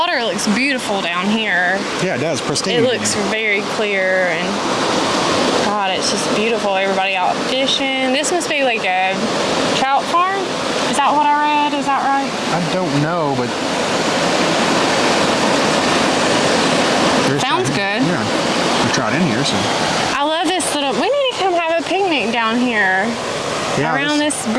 looks beautiful down here. Yeah, it does. Pristine. It looks very clear and God, it's just beautiful. Everybody out fishing. This must be like a trout farm. Is that what I read? Is that right? I don't know, but there's Sounds trout. good. Yeah. We trout in here, so. I love this little. We need to come have a picnic down here. Yeah, Around this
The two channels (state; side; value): identical; both; correlation 1.00